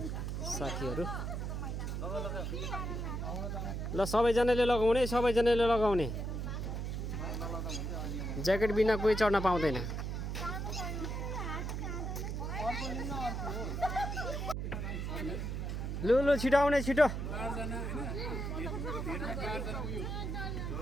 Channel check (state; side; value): noise; right; hum, 3 dB below the sound